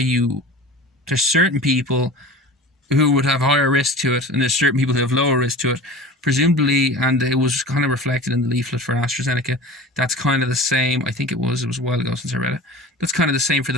there's certain people who would have higher risk to it, and there's certain people who have lower risk to it, presumably, and it was kind of reflected in the leaflet for AstraZeneca. That's kind of the same. I think it was a while ago since I read it. That's kind of the same for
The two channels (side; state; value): both; normal; correlation 0.37